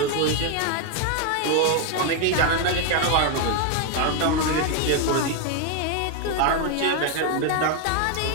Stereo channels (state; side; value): different; both; correlation 0.01